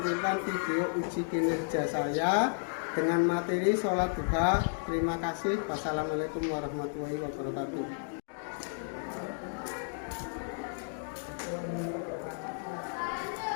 video uji kinerja saya dengan materi sholat duha. Terima kasih. Wassalamualaikum warahmatullahi wabarakatuh.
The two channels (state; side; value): silent; right; digital silence